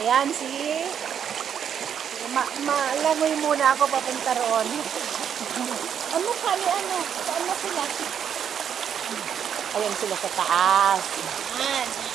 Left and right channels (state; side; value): quieter; left; 8.4 dB